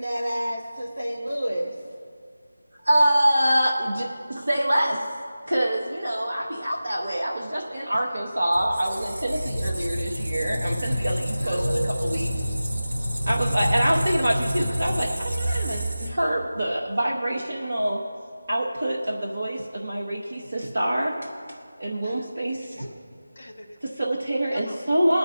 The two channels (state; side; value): inverted; both; correlation -0.96